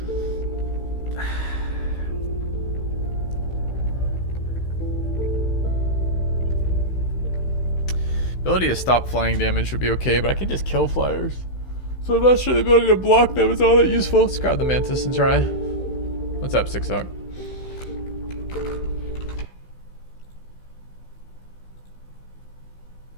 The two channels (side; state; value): right; late; 16 ms